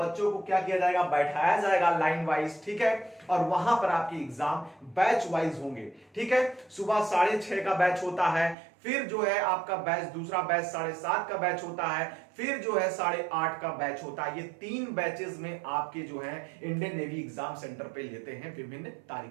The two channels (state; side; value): drops out; left; at 8.6 s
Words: को क्या किया जाएगा, बैठाया जाएगा लाइन वाइज, ठीक है। और वहां पर आपकी एग्जाम बैच वाइज होंगे, ठीक है। सुबह 6:30 का बैच होता है, फिर जो है आपका बैच दूसरा बैच 7:30 का बैच होता है, फिर जो है 8:30 का बैच होता है। ये 3 बैचेस में आपके जो है इंडियन नेवी एग्जाम सेंटर पे लेते हैं विभिन्न